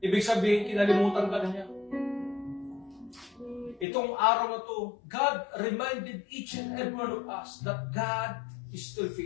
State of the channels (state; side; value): drops out; right; at 3.9 s